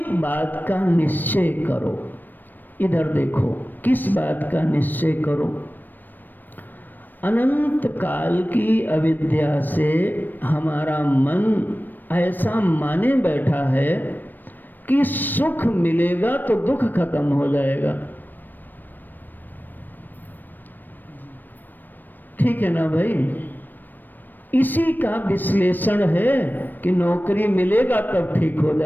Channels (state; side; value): late; right; 0.090 ms